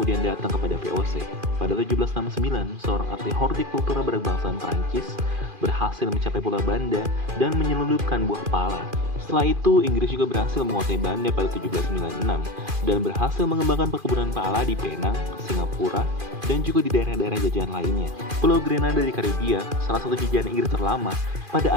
datang kepada VOC. Pada 1769, seorang ahli hortikultura berbangsaan Prancis berhasil mencapai Pulau Banda dan menyelundupkan buah pala. Setelah itu, Inggris juga berhasil menguasai Banda pada 1796 dan berhasil mengembangkan perkebunan pala di Penang, Singapura, dan juga di daerah-daerah jajahan lainnya. Pulau Grenada di Karibia, salah satu jajahan Inggris terlama, pada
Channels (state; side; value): late; left; 2.4 ms